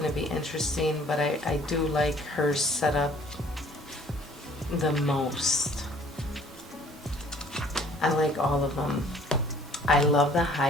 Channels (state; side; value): normal; both; correlation 0.55